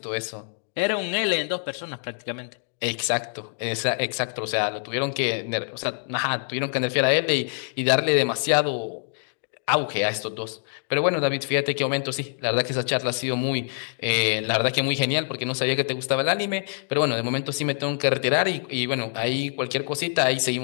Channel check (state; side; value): silent; right; digital silence